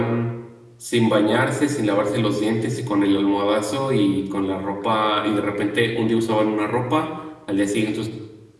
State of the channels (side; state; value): both; identical; correlation 1.00